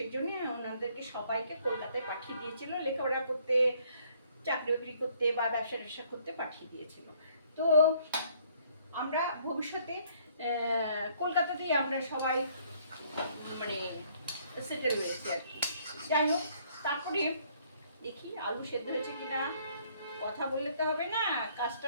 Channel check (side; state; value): both; inverted; correlation -0.63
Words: জন্য ওনাদেরকে সবাইকে কলকাতায় পাঠিয়ে দিয়েছিল লেখাপড়া করতে, চাকরি বাকরি করতে বা ব্যবসা ট্যাবসা করতে পাঠিয়ে দিয়েছিল। তো আমরা ভবিষ্যতে কলকাতাতেই আমরা সবাই মানে সেটেল হয়েছি আর কি। যাই হোক, তারপরে দেখি আলু সেদ্ধ হয়েছে কিনা। কথা বললে তো হবে না,